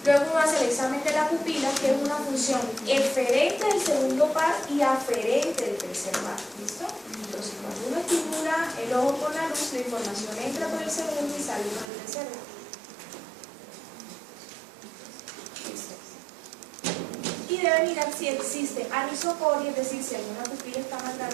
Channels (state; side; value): drops out; left; at 11.9 s